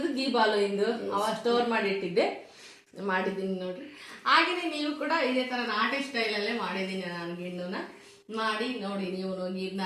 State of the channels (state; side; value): identical; both; correlation 1.00